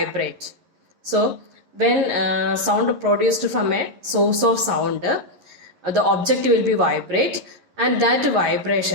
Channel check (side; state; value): left; late; 11 ms